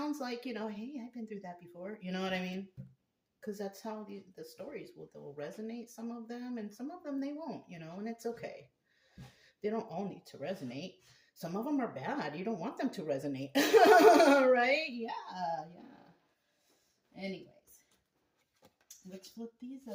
like, you know, hey, I've been through that before, you know what I mean? Because that's how the stories they'll resonate, some of them, and some of them they won't, you know, and it's okay. They don't all need to resonate. Some of them are bad. You don't want them to resonate. Right? Yeah, yeah. Anyways, let's flip these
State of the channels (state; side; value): identical; both; correlation 1.00